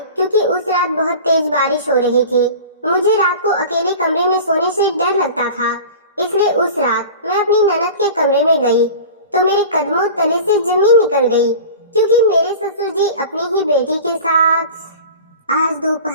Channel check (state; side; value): inverted; both; correlation -0.37